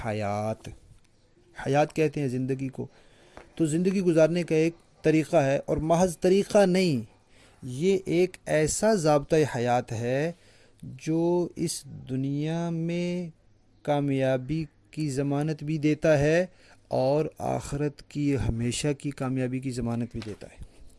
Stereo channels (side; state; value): both; identical; correlation 1.00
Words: حیات۔ حیات کہتے ہیں زندگی کو۔ تو زندگی گزارنے کا ایک طریقہ ہے، اور محض طریقہ نہیں، یہ ایک ایسا ضابطۂ حیات ہے جو اس دنیا میں کامیابی کی ضمانت بھی دیتا ہے اور آخرت کی ہمیشہ کی کامیابی کی ضمانت بھی دیتا ہے۔